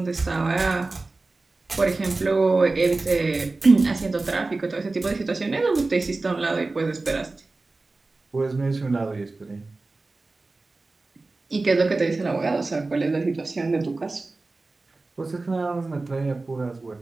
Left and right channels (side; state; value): left; quieter; 3.4 dB